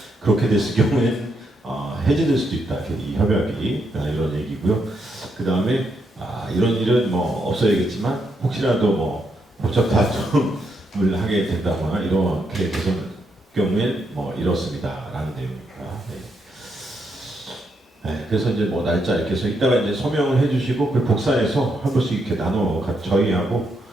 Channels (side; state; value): both; normal; correlation 0.79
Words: 그렇게 됐을 경우에는 해지될 수도 있다, 이 협약이 이런 얘기고요. 그 다음에 이런 일은 뭐 없어야겠지만 혹시라도 뭐 법적 다툼을 하게 된다거나 이렇게 되는 경우엔 뭐 이렇습니다라는 내용입니다. 네. 네, 그래서 이제 뭐 날짜 이렇게 해서 이따가 이제 서명을 해주시고 그 복사해서 한 번씩 이렇게 나눠 저희하고